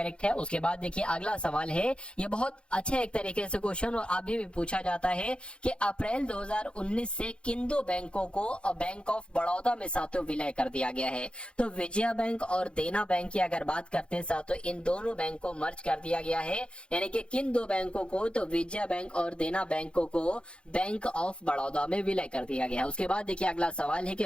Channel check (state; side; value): late; right; 0.056 ms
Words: है। उसके बाद देखिए अगला सवाल है, ये बहुत अच्छा एक तरीके से क्वेश्चन और अभी भी पूछा जाता है कि अप्रैल 2019 से किन दो बैंकों को बैंक ऑफ बड़ौदा में साथियों विलय कर दिया गया है। तो विजया बैंक और देना बैंक की अगर बात करते हैं साथियों, इन दोनों बैंक को मर्ज कर दिया गया है। यानी कि किन दो बैंकों को, तो विजया बैंक और देना बैंकों को बैंक ऑफ बड़ौदा में विलय कर दिया गया है। उसके बाद देखिए अगला सवाल है कि